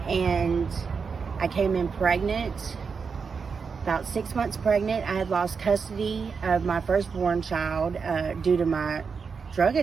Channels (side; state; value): left; quieter; 5.5 dB